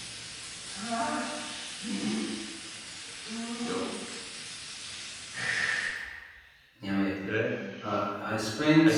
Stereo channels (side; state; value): both; identical; correlation 1.00